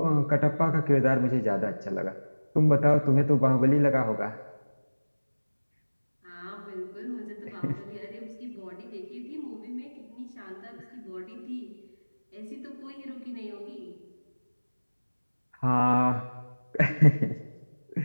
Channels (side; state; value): both; inverted; correlation -1.00